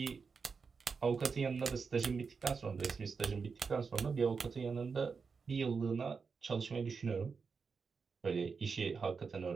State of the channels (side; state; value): left; quieter; 5.2 dB